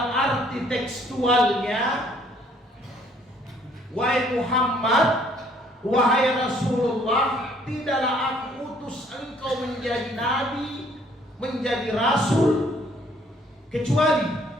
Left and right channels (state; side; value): normal; both; correlation 0.62